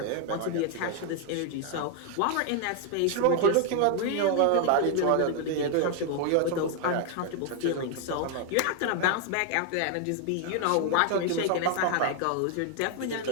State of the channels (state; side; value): different; both; correlation 0.01